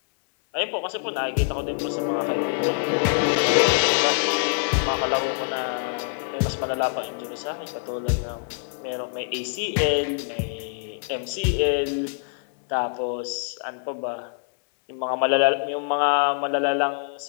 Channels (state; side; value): silent; right; 62 dB below the other